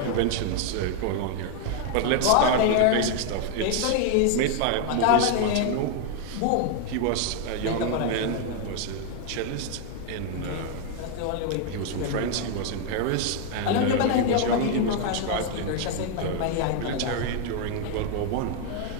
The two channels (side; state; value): both; different; correlation 0.00